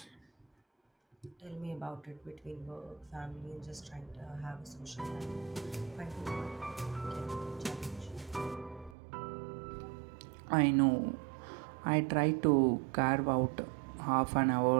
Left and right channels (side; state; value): left; drops out; at 9.0 s